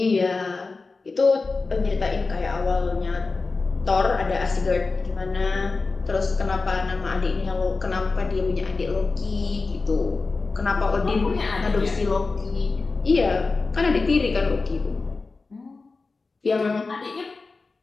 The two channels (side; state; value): right; quieter; 4.0 dB